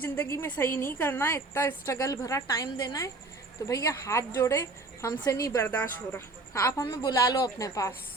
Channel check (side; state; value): left; quieter; 3.3 dB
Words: में सही नहीं करना है, इतना स्ट्रगल भरा टाइम देना है, तो भैया हाथ जोड़े, हमसे नहीं बर्दाश्त हो रहा, आप हमें बुला लो अपने पास।